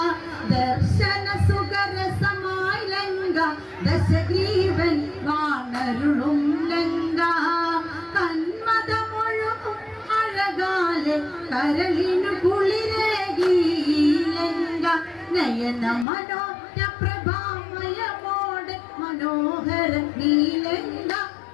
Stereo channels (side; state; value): right; drops out; at 16.1 s